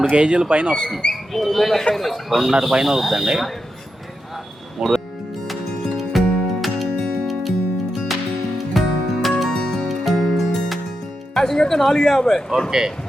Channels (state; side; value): normal; both; correlation 0.87